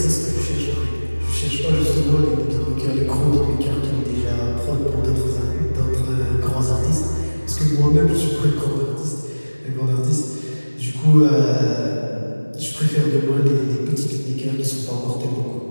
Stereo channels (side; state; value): both; inverted; correlation -1.00